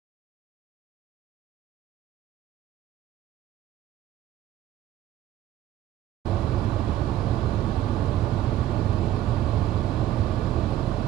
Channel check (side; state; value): left; quieter; 13.0 dB